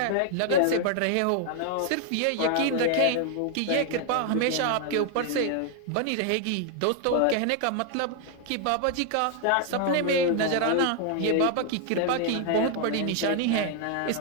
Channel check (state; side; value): different; both; correlation 0.00